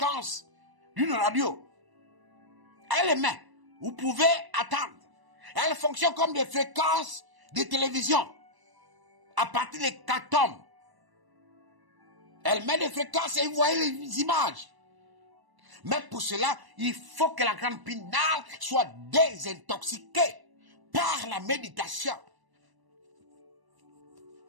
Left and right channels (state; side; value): late; left; 1.0 ms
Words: d'une radio. Elle émet. Vous pouvez attendre. Elle fonctionne comme des fréquences de télévision. À partir des 4 tomes. Elle met des fréquences et vous voyez les images. Mais pour cela, il faut que la glande pinale soit désintoxiquée par la méditation.